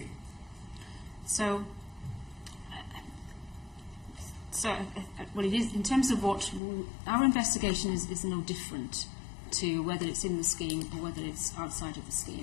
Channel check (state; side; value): drops out; right; at 6.6 s